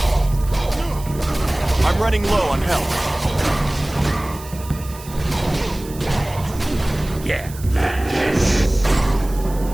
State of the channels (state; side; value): noise; right; hiss, 17 dB below the sound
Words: I'm running low on health. Yeah.